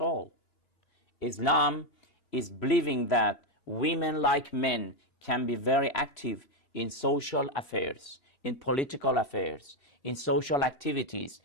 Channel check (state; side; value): late; right; 2.9 ms